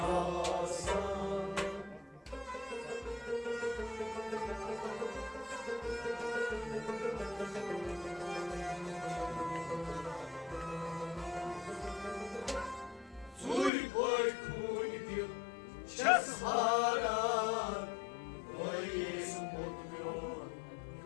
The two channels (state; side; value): drops out; right; at 13.7 s